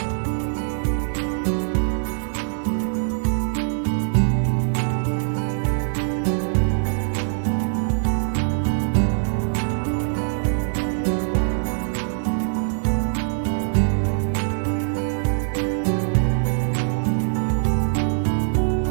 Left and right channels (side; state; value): left; silent; digital silence